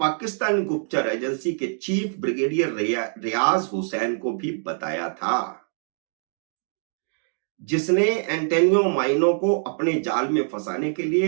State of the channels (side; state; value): left; silent; digital silence